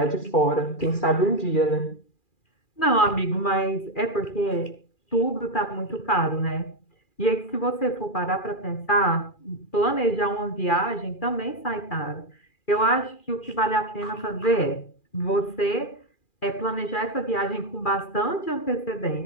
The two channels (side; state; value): right; late; 2.4 ms